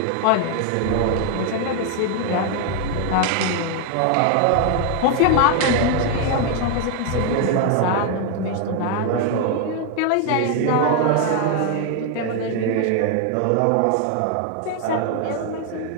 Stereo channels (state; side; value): different; both; correlation 0.00